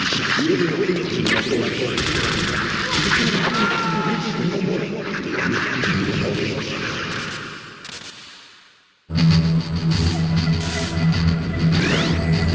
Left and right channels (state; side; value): identical; both; correlation 1.00